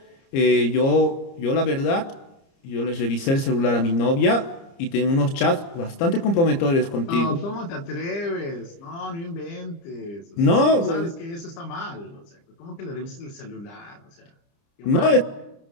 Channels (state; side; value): late; right; 30 ms